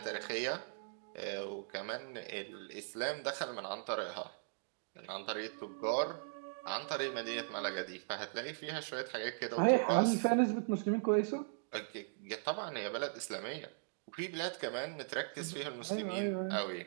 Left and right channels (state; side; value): silent; left; digital silence